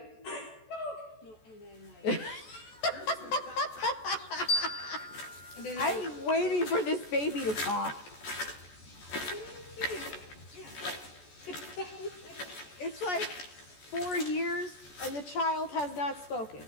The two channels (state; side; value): late; right; 14 ms